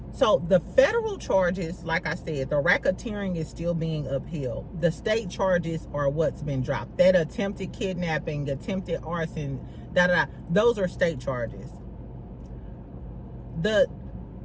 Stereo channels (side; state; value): both; identical; correlation 1.00